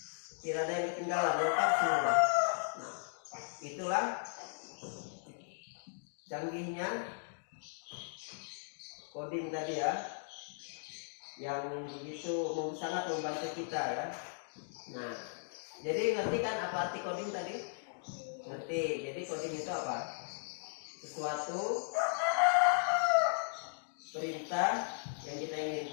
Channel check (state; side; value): silent; right; digital silence